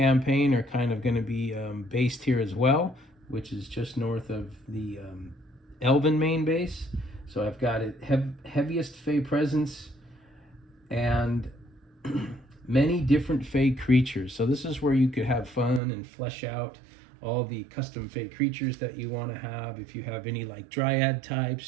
are kind of going to be based here as well, which is just north of the Elven main base. So I've got it heaviest Fae presence and many different Fae creatures. So this is where you could have fun and flesh out all the custom Fae creatures that you want to have. If you have any like Dryad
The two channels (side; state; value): left; drops out; at 15.8 s